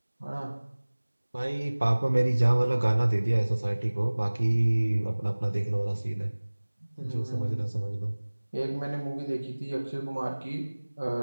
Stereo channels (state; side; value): inverted; both; correlation -1.00